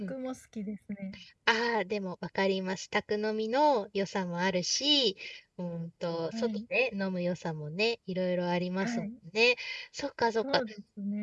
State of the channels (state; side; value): identical; both; correlation 1.00